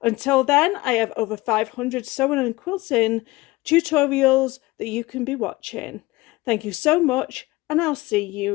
Until then, I have over 500 sewing and quilting tutorials that you can be watching. Thank you so much, and I'll see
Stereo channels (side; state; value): right; quieter; 20.4 dB